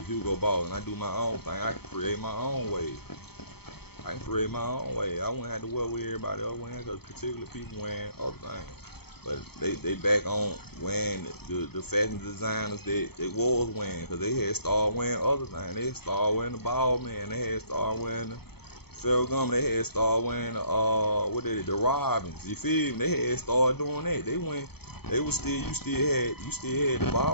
Hugo Boss, and I do my own thing, I can create my own way. I wouldn't have to wear with everybody else wearing, because particular people wearing other things. But they back on wearing the fashion designers that was wearing, because they had started wearing other things. They had started wearing the ball man. They had started wearing the Ferragamo. They had started wearing the Robins. You feel me? They had started doing that. You still had the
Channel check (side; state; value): right; late; 0.97 ms